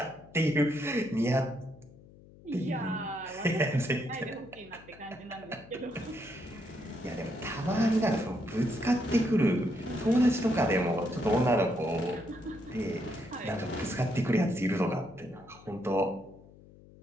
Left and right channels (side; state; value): left; noise; hum, 22 dB below the sound